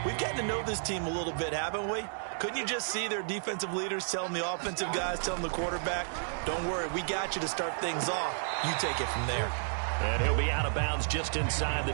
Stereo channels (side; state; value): left; silent; digital silence